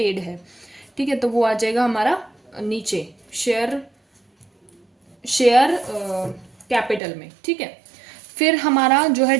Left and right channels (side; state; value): left; drops out; at 7.0 s